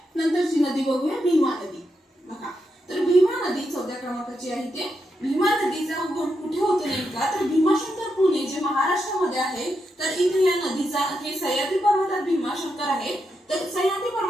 नंतरची नदी बघूया भीमा नदी। बघा तर भीमा नदी 14 क्रमांकाची आहे। ते भीमा नदीचा उगम कुठे होतो नेमका तर भीमाशंकर पुणे जे महाराष्ट्रामध्ये आहे तर इथे या नदीचा हे सह्याद्री पर्वतात भीमाशंकर आहे तर सह्याद्री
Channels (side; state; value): both; normal; correlation 0.84